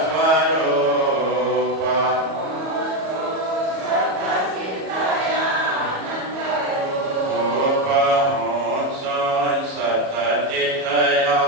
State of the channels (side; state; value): left; late; 37 ms